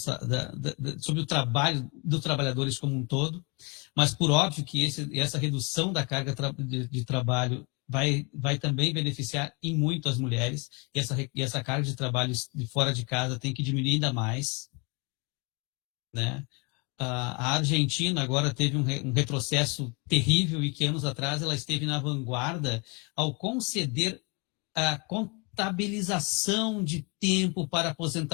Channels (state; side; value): quieter; right; 31.1 dB